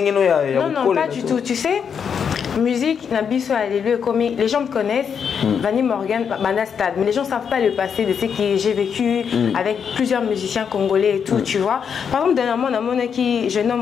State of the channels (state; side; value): quieter; right; 7.1 dB